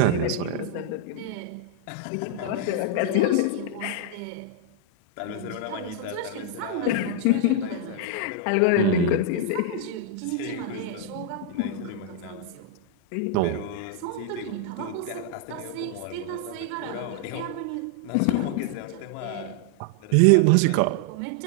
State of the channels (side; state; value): both; different; correlation -0.01